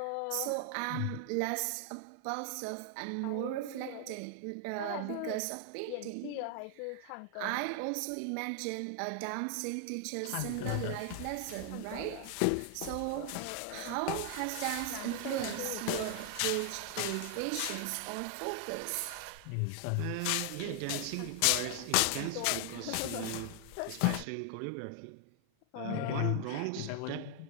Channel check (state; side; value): different; both; correlation 0.00